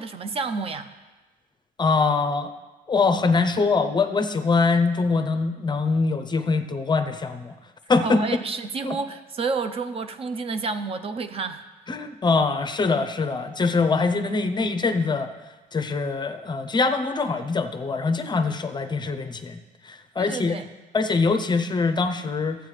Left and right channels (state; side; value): quieter; right; 3.1 dB